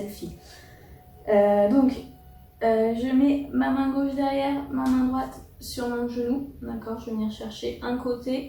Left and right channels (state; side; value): identical; both; correlation 1.00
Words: Je mets ma main gauche derrière, ma main droite sur mon genou. D'accord, je vais venir chercher un